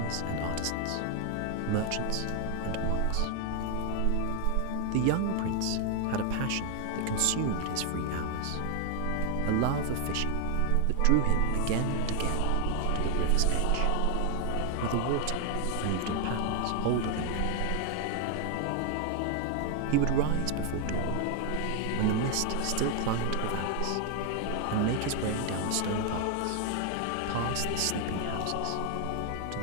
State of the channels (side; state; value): both; different; correlation 0.00